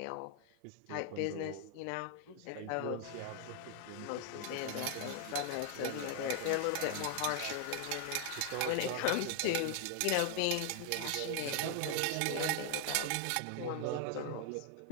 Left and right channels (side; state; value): both; different; correlation 0.00